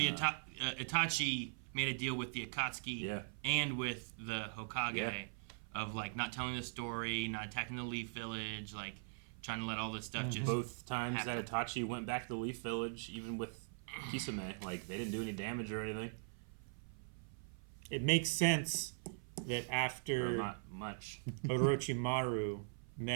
Itachi made a deal with the Akatsuki and with the Hokage of like not telling the story, not attacking the Leaf Village, like trying to let all this stuff just Both times happen. that Itachi went back to the Leaf Village, even with Kisame, like they didn't do any damage or anything. It makes sense that Or after not much. Orochimaru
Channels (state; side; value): silent; left; 50 dB below the other